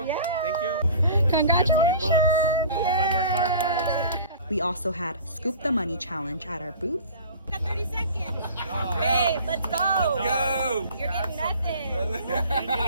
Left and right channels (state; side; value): inverted; both; correlation -0.44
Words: Yeah. Thank you. Congratulations. $20. I hope I more car fires. We also had Scoop the Money challenge at our booth. 30 seconds. Babe, let's go. Go. You're getting nothing. I'm